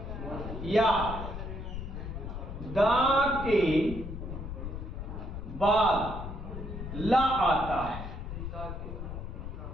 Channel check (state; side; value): noise; left; rumble, 7 dB below the sound